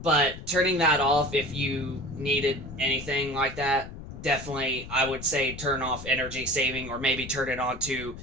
But turning that off, if you needed anything like that, definitely I would say turn off energy saving, or maybe turn it on to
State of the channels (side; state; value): left; noise; rumble, 12 dB below the sound